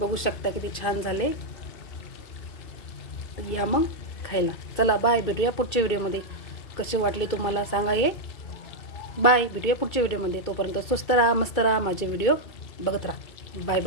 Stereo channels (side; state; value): right; late; 2.3 ms